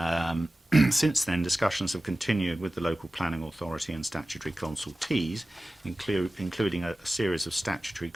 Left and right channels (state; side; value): normal; both; correlation 0.96